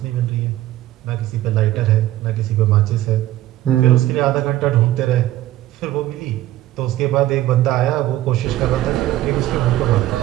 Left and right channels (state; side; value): quieter; left; 14.6 dB